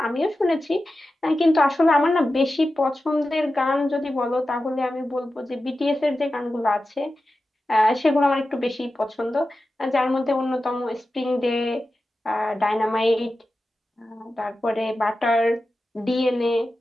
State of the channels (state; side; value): normal; both; correlation 0.93